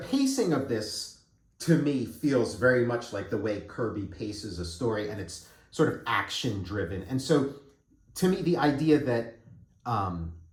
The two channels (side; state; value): both; identical; correlation 1.00